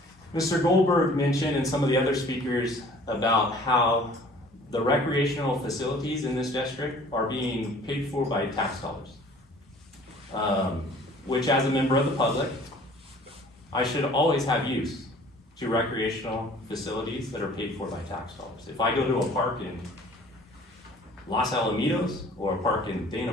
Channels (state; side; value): normal; both; correlation 0.51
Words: Mr. Goldberg mentioned, and some of the other speakers, about how the recreational facilities in this district are being paid for by tax dollars. Which, as a member of the public, I should always have use to recreational facilities that are paid for by tax dollars. If I go to a park in Los Alamitos, or a park in Dana